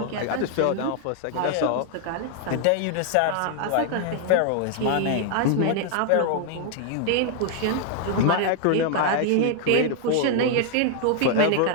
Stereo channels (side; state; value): both; different; correlation 0.00